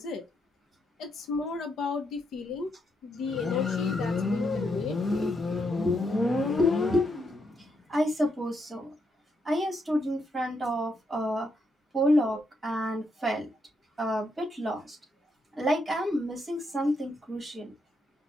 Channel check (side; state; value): both; normal; correlation 0.79